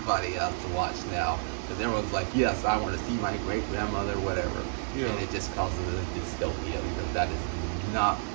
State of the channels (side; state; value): left; silent; digital silence